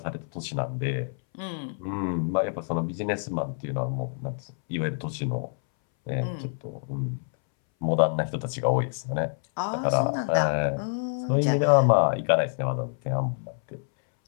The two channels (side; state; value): right; silent; 60 dB below the other